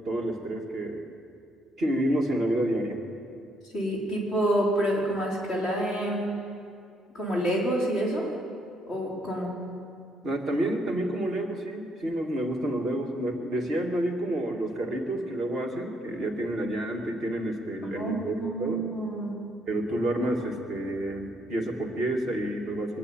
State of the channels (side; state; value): both; normal; correlation 0.72